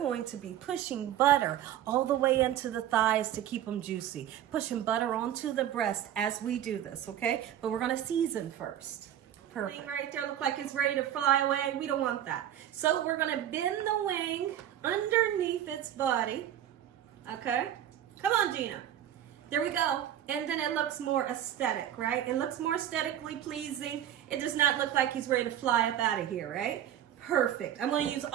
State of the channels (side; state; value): left; quieter; 11.1 dB